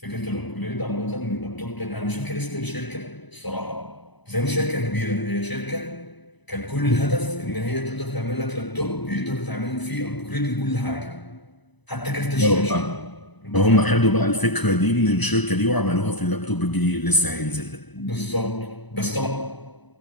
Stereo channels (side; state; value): right; late; 1.0 ms